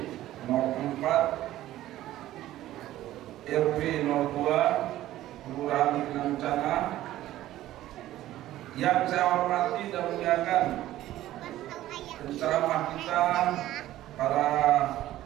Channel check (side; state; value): left; quieter; 14.4 dB